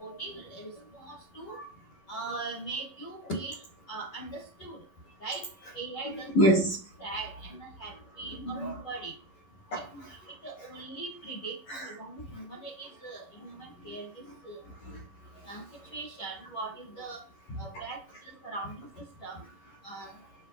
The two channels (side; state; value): right; late; 11 ms